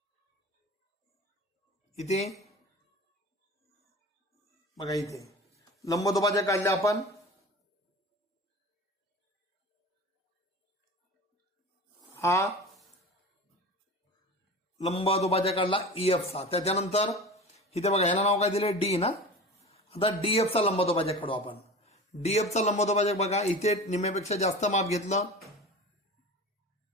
इथे बघा इथे लंबदुभाजक काढले आपण. हा लंबदुभाजक काढला ई एफ चा. त्याच्यानंतर इथे बघा ह्याला नाव काय दिले, डी ना. आता डी एफ चा लंबदुभाजक काढू आपण. डी एफ चा लंबदुभाजक बघा इथे निम्म्यापेक्षा जास्त माप घेतलं,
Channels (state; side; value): normal; both; correlation 0.34